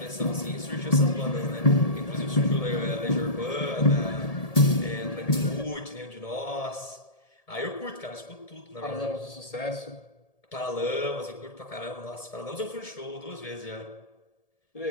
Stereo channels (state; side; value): late; right; 1.7 ms